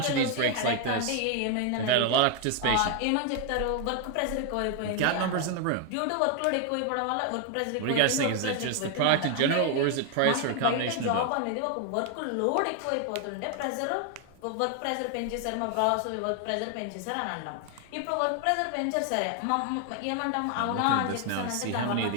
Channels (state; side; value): different; both; correlation 0.00